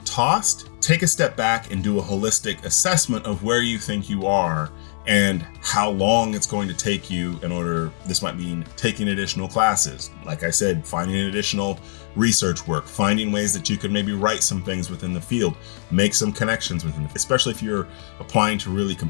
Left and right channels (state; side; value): silent; right; 64 dB below the other